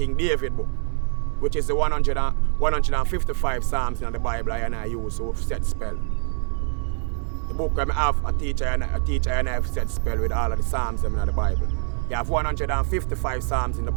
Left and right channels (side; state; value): left; silent; 62 dB below the other